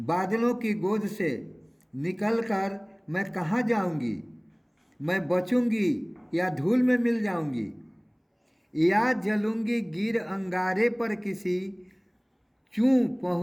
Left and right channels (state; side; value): identical; both; correlation 1.00